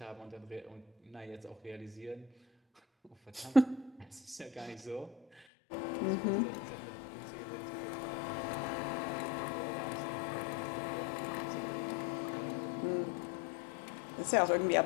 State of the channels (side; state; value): right; drops out; at 5.4 s